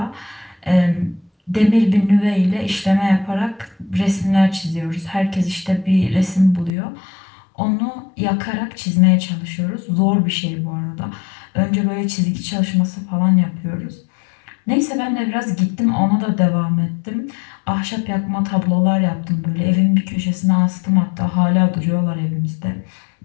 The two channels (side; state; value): right; drops out; at 6.7 s